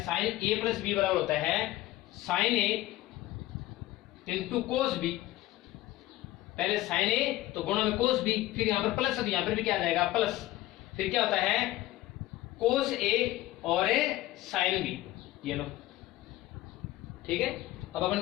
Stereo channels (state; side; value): quieter; right; 16.2 dB